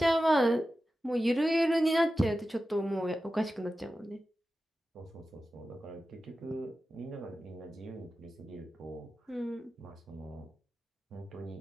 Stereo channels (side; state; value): both; normal; correlation 0.93